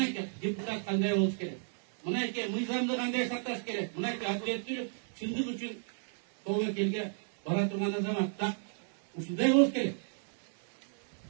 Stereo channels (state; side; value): silent; left; digital silence